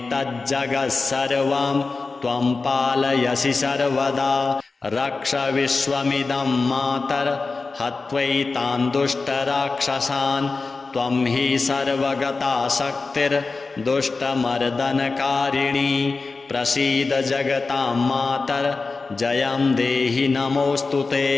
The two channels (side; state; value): right; quieter; 4.0 dB